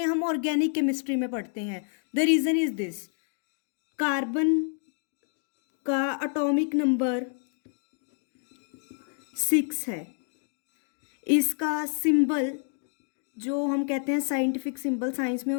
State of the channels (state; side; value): silent; right; 56 dB below the other